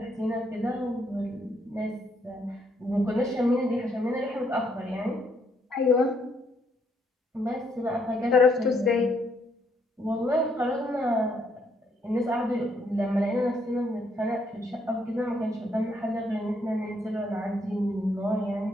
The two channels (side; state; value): both; normal; correlation 0.72